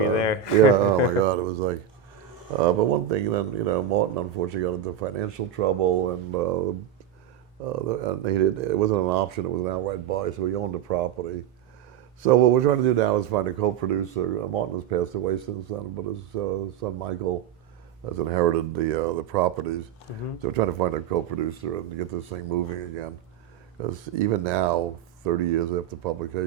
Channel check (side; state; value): left; quieter; 9.4 dB